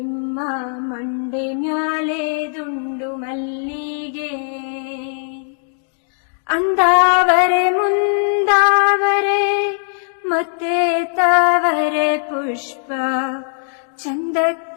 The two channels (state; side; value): silent; right; digital silence